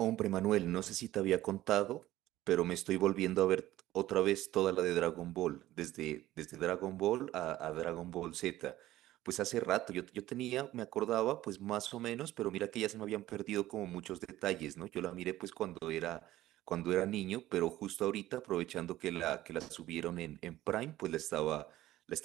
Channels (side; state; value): left; quieter; 15.2 dB